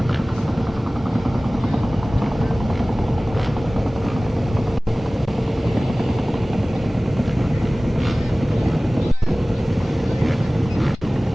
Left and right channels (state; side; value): normal; both; correlation 0.98